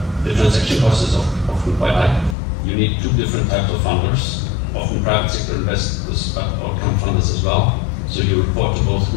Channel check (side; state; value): right; drops out; at 2.4 s